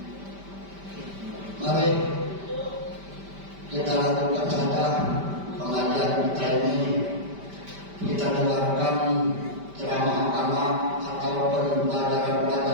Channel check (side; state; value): left; late; 5.1 ms